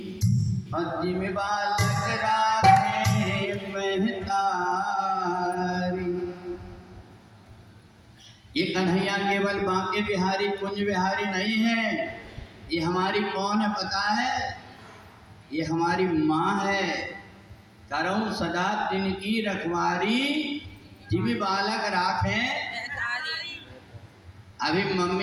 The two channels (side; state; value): both; identical; correlation 1.00